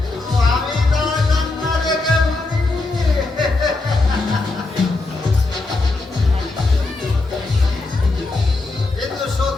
কিন্তু আমি তার কান্না দেখে ভাবিনি। কিন্তু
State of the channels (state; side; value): quieter; right; 3.3 dB